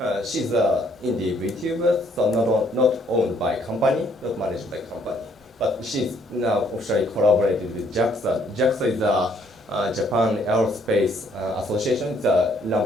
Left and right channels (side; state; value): both; normal; correlation 0.66